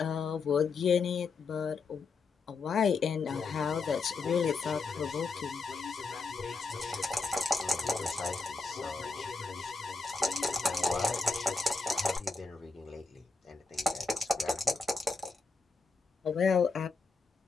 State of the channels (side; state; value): right; quieter; 4.3 dB